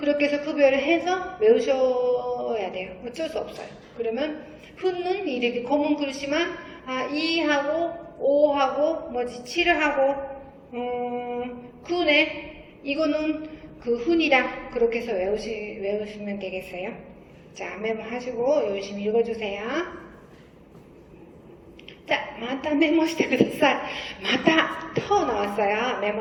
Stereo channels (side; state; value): both; identical; correlation 1.00